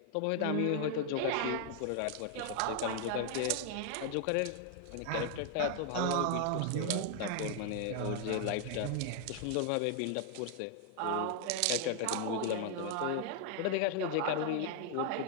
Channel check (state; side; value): different; both; correlation 0.00